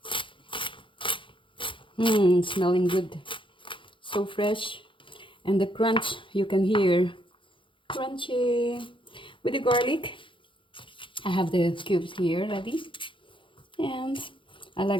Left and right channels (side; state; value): right; late; 0.25 ms